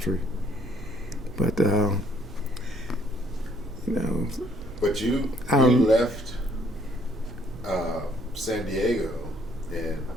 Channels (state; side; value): normal; both; correlation 0.64